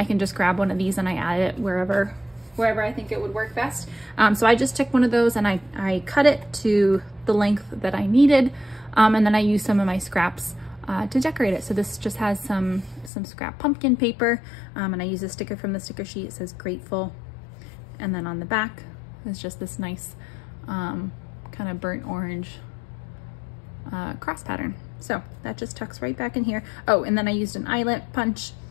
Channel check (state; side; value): drops out; right; at 13.1 s